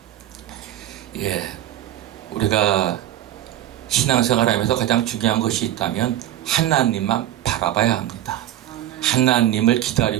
예, 우리가 신앙생활하면서 가장 중요한 것이 있다면 하나님만 바라봐야 합니다. 하나님을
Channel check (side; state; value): left; quieter; 12.9 dB